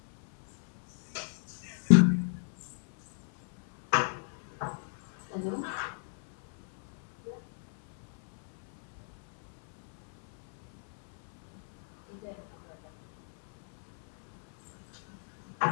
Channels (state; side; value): silent; right; 57 dB below the other